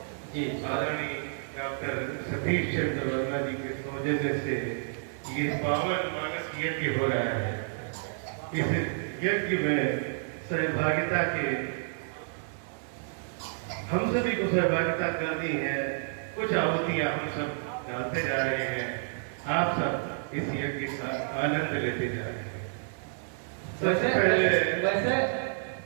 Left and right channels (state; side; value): silent; left; 58 dB below the other